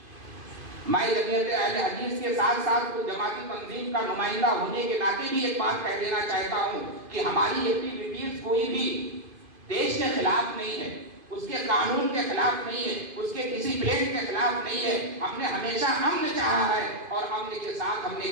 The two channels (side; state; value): left; late; 2.5 ms